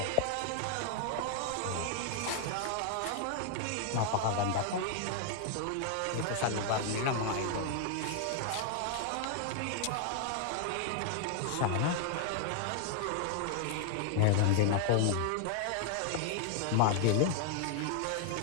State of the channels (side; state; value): both; different; correlation 0.00